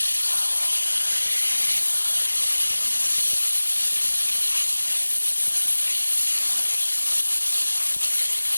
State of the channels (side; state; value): both; inverted; correlation -1.00